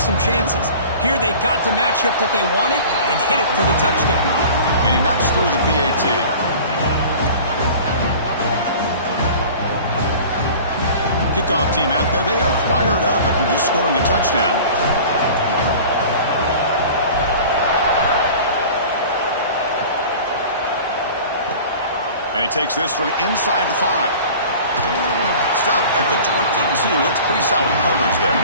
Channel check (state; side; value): inverted; both; correlation -0.42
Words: some chances. Here they got the matchup that they wanted and hit it for the touchdown. And he knocks through the PAT. Kickoff team out there, they are fired up after just scoring a touchdown. And he takes this from inside the 5. Stop at the 22. That's pretty solid coverage there.